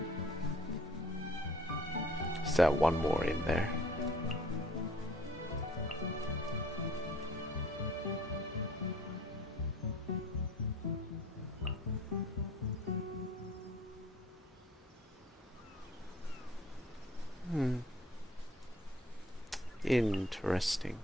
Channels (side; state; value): both; normal; correlation 0.53